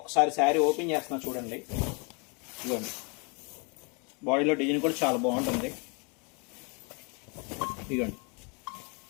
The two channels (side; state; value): right; quieter; 33.1 dB